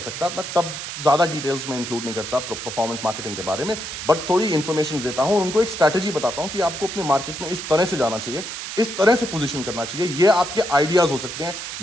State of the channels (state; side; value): noise; right; hiss, 7 dB below the sound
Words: मैं तब ज़्यादा डिटेल्स में इंक्लूड नहीं करता परफॉर्मेंस मार्केटिंग के बारे में, बट थोड़ी इन्फॉर्मेशन देता हूं और उनको एक स्ट्रैटेजी बताता हूं कि आपको अपने मार्केट में इस तरह से जाना चाहिए, इस तरह से पोजीशन करना चाहिए. ये आपके आइडियाज़ हो सकते हैं,